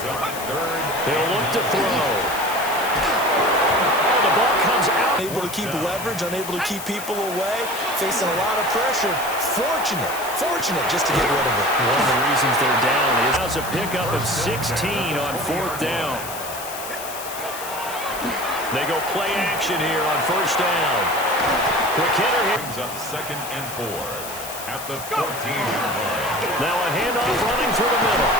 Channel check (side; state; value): left; noise; hiss, 10 dB below the sound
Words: up 3rd. They'll look to throw. Oh, the ball comes out. Unable to keep leverage, unable to keep people away, facing a lot of pressure. Fortunate just to get rid of it. One of the reasons they're down is a pickup of 16 on 4th down. They go play action here on 1st down. Quick hitter here. Brings up 2nd and 4 at the 14-yard line. Now a handoff running through the middle.